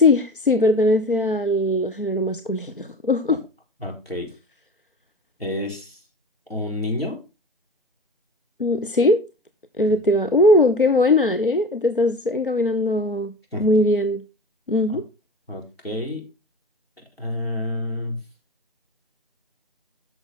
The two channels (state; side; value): normal; both; correlation 0.32